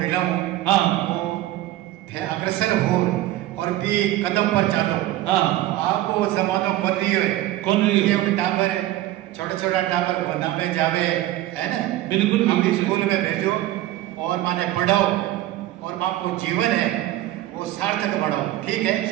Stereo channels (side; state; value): left; quieter; 15.0 dB